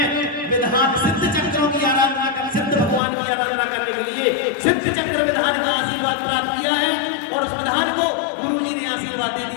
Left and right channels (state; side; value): drops out; right; at 3.0 s